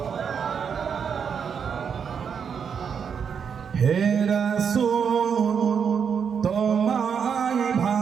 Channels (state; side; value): quieter; left; 6.9 dB